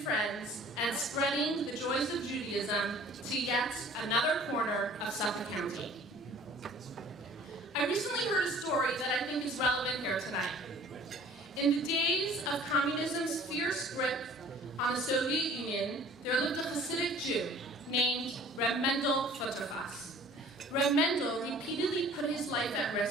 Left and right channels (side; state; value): both; normal; correlation 0.50